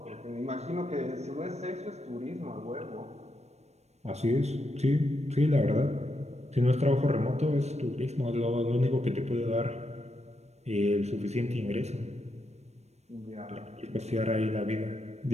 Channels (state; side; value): late; left; 0.32 ms